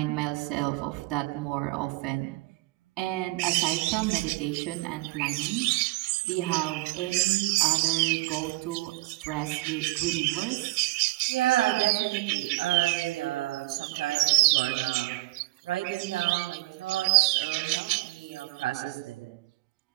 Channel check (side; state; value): left; quieter; 21.6 dB